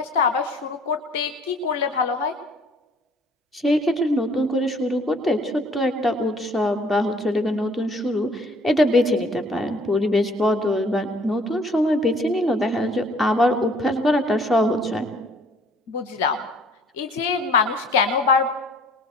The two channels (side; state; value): both; normal; correlation 0.57